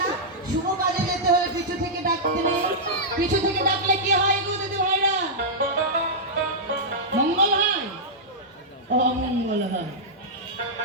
শুভ কাজে যেতে হলে পিছু থেকে ডাকতে নেই। পিছু থেকে ডাকলে কি হয় গো দিদি ভাইরা? মঙ্গল হয়, অমঙ্গল হয়।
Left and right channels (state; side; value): normal; both; correlation -0.10